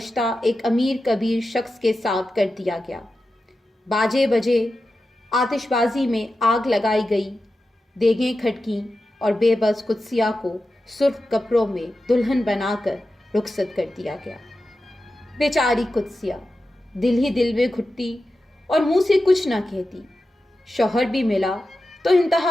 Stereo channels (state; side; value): normal; both; correlation 0.92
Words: ایک امیر کبیر شخص کے ساتھ کر دیا گیا۔ باجے بجے، آتش بازی میں آگ لگائی گئی، دیگیں کھٹکیں اور بے بس قدسیہ کو سرخ کپڑوں میں دلہن بنا کر رخصت کر دیا گیا۔ بیچاری قدسیہ دل ہی دل میں گھٹتی اور منہ سے کچھ نہ کہتی۔ شوہر بھی ملا تو